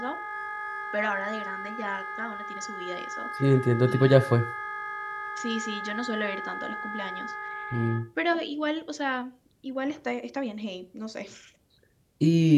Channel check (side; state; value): both; identical; correlation 1.00